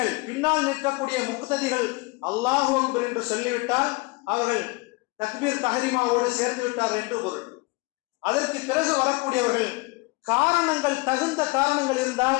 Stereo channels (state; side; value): quieter; right; 26.3 dB